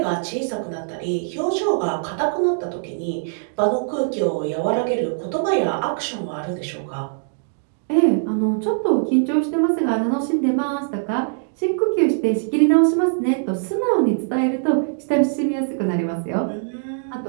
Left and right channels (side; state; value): left; silent; digital silence